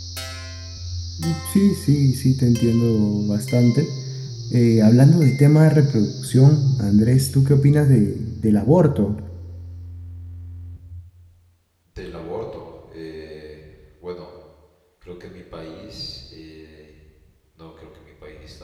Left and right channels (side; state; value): both; identical; correlation 1.00